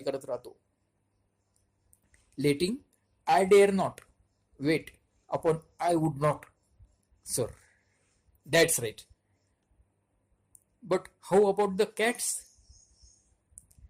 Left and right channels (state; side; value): identical; both; correlation 1.00